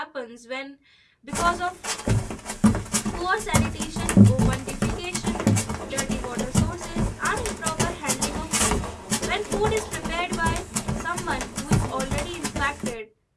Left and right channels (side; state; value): both; identical; correlation 1.00